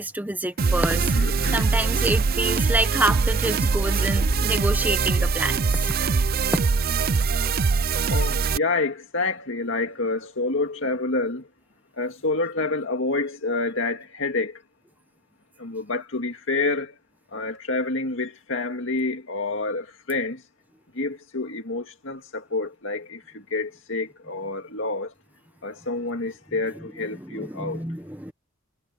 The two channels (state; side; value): normal; both; correlation 0.40